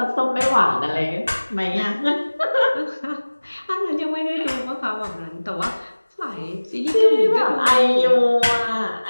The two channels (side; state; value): both; inverted; correlation -1.00